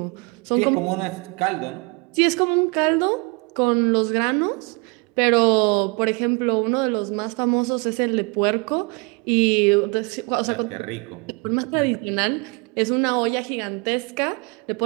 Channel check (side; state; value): left; quieter; 30.2 dB